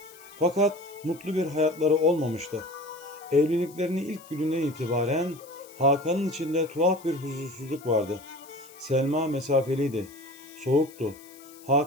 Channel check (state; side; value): noise; left; hiss, 22 dB below the sound